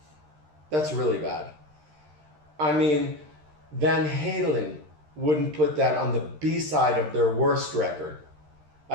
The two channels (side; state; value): left; late; 13 ms